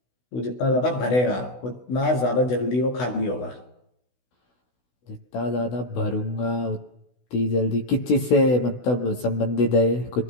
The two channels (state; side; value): late; right; 16 ms